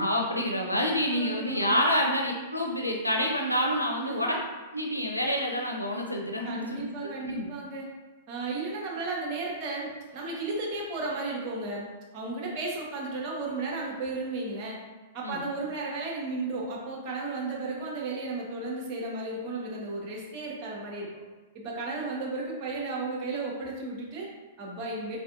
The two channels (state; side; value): inverted; both; correlation -0.40